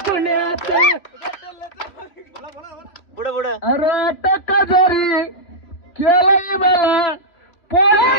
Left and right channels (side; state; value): right; late; 2.7 ms